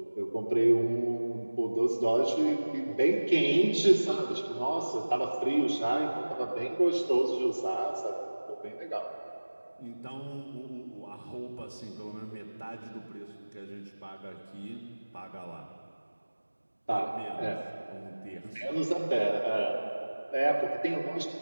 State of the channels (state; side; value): inverted; both; correlation -1.00